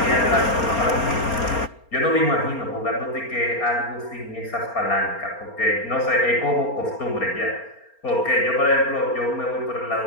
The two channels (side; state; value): right; late; 4.3 ms